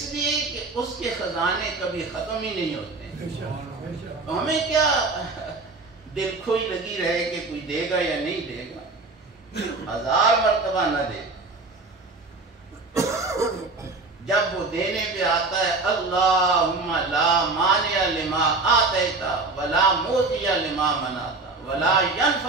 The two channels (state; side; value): quieter; left; 3.6 dB